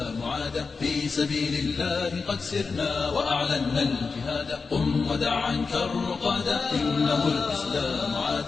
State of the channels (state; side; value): quieter; right; 4.7 dB